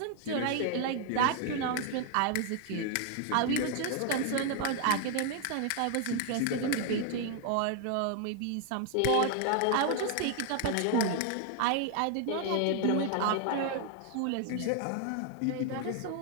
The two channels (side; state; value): both; different; correlation 0.00